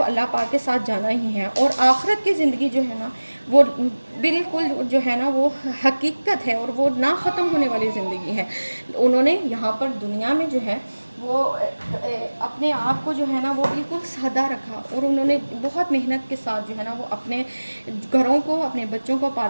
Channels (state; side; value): inverted; both; correlation -1.00